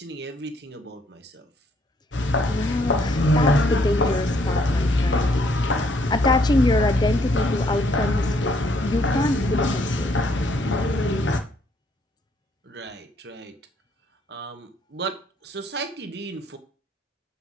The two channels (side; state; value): both; normal; correlation 0.68